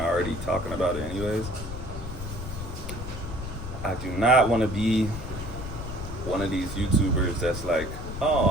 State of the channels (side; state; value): left; noise; rumble, 8 dB below the sound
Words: of already talking about it anyways. I do not want to be one of these YouTubers that's like, oh,